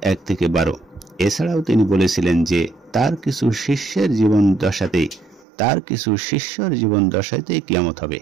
1-12। এছাড়াও তিনি বলেছিলেন যে তার কিছু শিষ্যের জীবন দশাতেই কিয়ামত হবে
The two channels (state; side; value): drops out; left; at 5.5 s